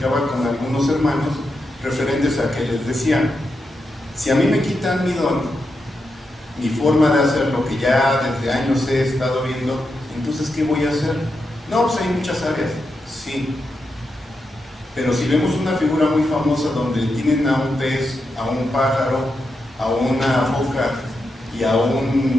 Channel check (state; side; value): normal; both; correlation 0.86